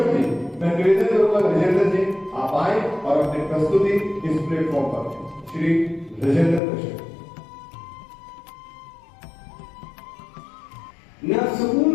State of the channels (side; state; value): right; drops out; at 6.6 s